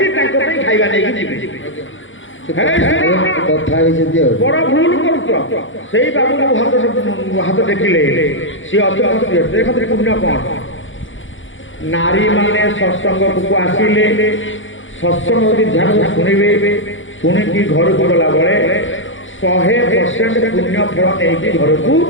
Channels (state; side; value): late; right; 0.56 ms